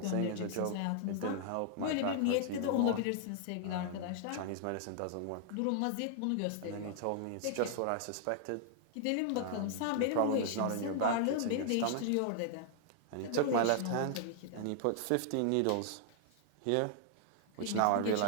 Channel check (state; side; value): different; both; correlation -0.01